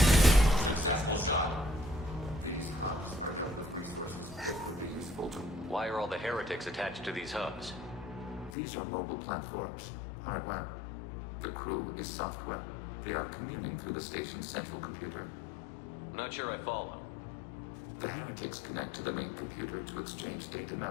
Why are all the heretics attached to these hubs? These are mobile platforms, hardware. The crew is software. They are communing through the station's central computer. Not sure I follow. The heretics connect to the main computer to exchange data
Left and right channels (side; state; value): right; drops out; at 8.6 s